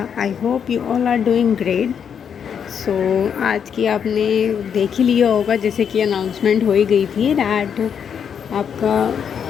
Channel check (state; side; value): quieter; right; 7.7 dB